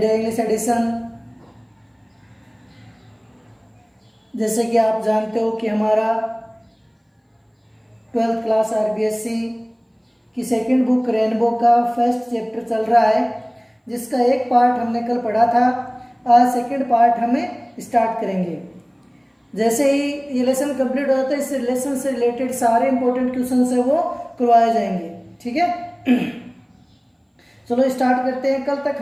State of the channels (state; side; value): identical; both; correlation 1.00